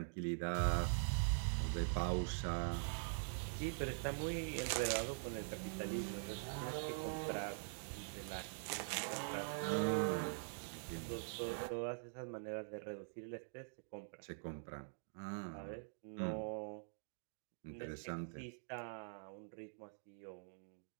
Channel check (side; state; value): left; silent; digital silence